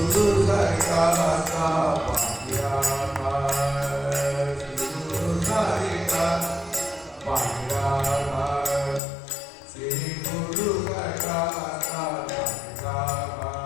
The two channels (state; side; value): drops out; right; at 9.0 s